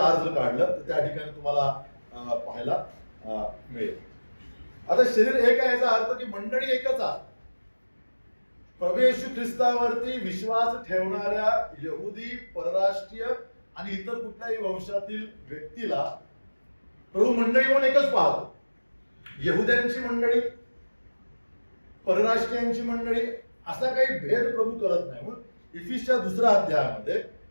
जर काढलं तर त्या ठिकाणी तुम्हाला पाहायला मिळेल. आता शरीर एक आहे याचा अर्थ की मंडळी एकच आहे. प्रभू येशू ख्रिस्तावरती विश्वास ठेवणाऱ्या यहुदी, परराष्ट्रीय आणि इतर कुठल्याही वंशातील व्यक्तीला प्रभू मंडळी म्हणून एकच पाहतो. यहुद्यांची मंडळी, परराष्ट्रीयांची मंडळी असा काही भेद प्रभू करत नाही. म्हणून इफिसच्या 2ऱ्या अध्यायामध्ये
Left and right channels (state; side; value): inverted; both; correlation -1.00